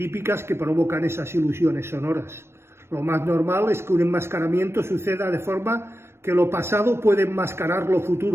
que provocan esas ilusiones sonoras, lo más normal es que un enmascaramiento suceda de forma que lo pasado puede enmascarar lo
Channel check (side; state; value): left; late; 0.12 ms